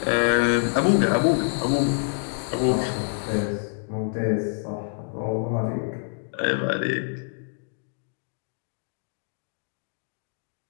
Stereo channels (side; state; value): right; silent; 61 dB below the other